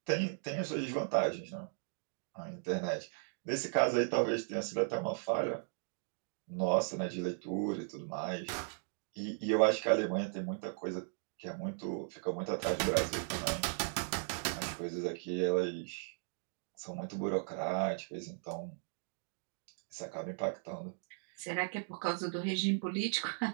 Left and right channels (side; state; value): left; silent; digital silence